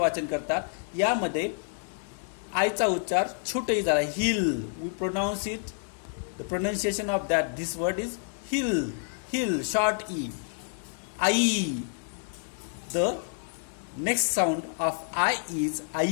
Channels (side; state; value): right; silent; digital silence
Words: करतात. यामध्ये आयचा उच्चार छोटही झाला hill. We pronounce it, the pronunciation of that this word is hill. Hill short E. I. The next sound of I is